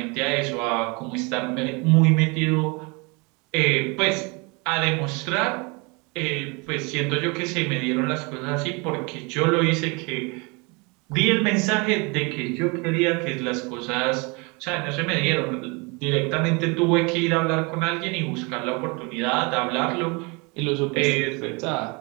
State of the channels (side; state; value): left; quieter; 29.2 dB